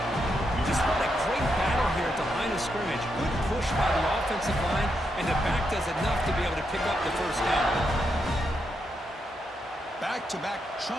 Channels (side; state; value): both; normal; correlation 0.82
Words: Just what a great battle here at the line of scrimmage. Good push by the offensive line, and the back does enough to be able to pick up the first down. Back-to-back